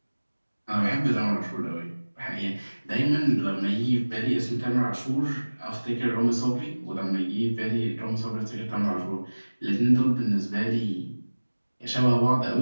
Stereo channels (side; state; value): both; inverted; correlation -1.00